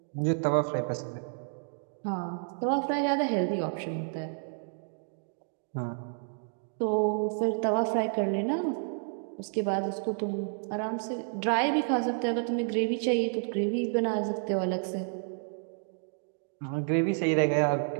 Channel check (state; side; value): silent; left; 58 dB below the other